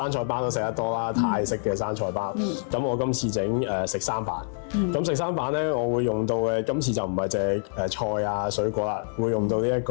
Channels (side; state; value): right; silent; 61 dB below the other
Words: 菜包都食得多啦，泰式嘅生菜包。咁我今次整食三版。咁食三版咧，我會用到嘅今次就唔係淨係菜啊水果啦，會用到呢一